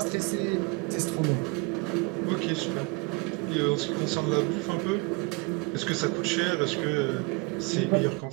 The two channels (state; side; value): quieter; left; 28.4 dB